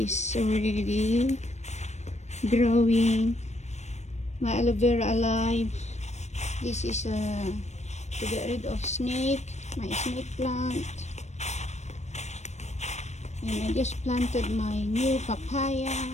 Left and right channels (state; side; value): late; right; 0.33 ms